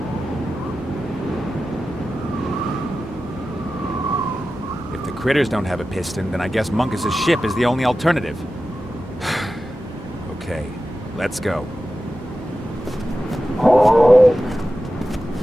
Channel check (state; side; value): normal; both; correlation 0.93